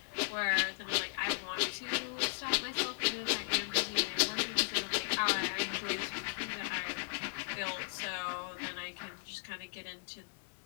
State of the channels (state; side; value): silent; right; digital silence